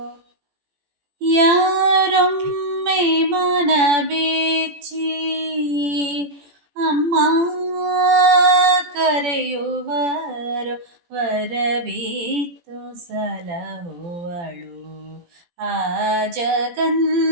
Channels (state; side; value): late; left; 17 ms